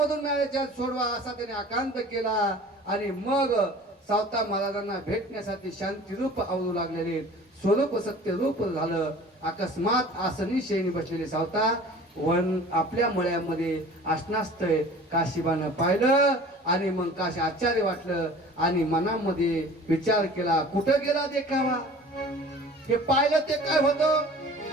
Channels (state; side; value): normal; both; correlation 0.44